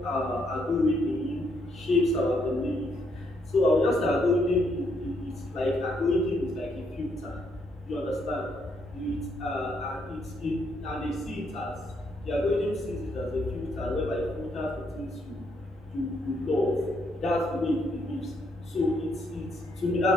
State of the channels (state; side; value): normal; both; correlation 0.74